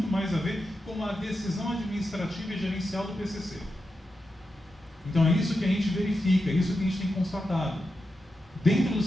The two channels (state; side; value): normal; both; correlation 0.89